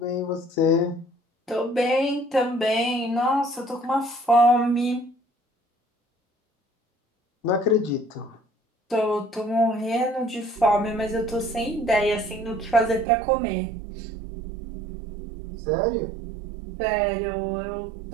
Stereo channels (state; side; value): drops out; left; at 13.1 s